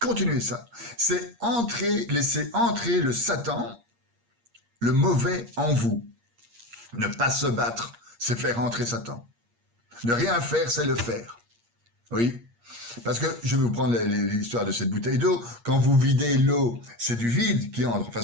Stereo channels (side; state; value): left; late; 8.5 ms